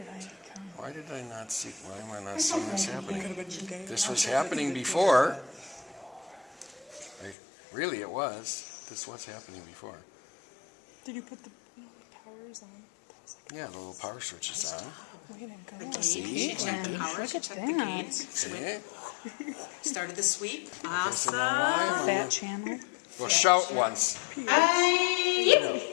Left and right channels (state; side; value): drops out; right; at 7.4 s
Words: I come? Why did I not see, why am I not There's seeing something this I happening? can This was happening before. Really, it was. This was happening before. Did you put the powers on? Yeah, the little power switch is on. Way to go. See? She checked the power, Look she at checked the that. gates, See? started the sweep. So Awesome. now why am I Fat not- channel. Well, shout once.